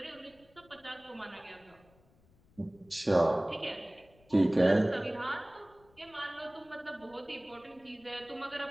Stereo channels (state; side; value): noise; left; rumble, 29 dB below the sound